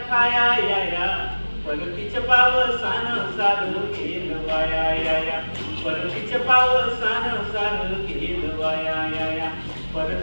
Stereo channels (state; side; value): inverted; both; correlation -1.00